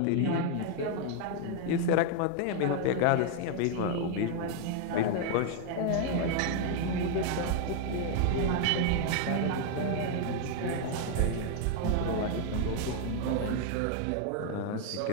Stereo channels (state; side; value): different; both; correlation 0.00